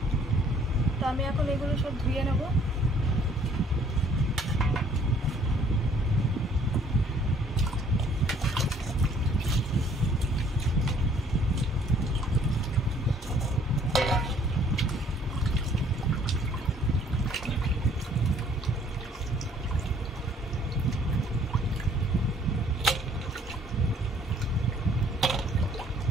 তো আমি এখন এগুলো সব ধুয়ে নেব।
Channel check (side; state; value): both; normal; correlation 0.59